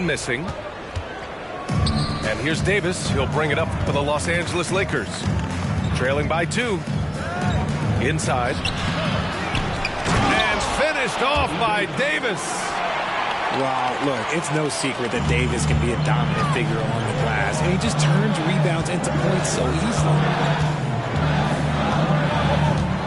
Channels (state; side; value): identical; both; correlation 1.00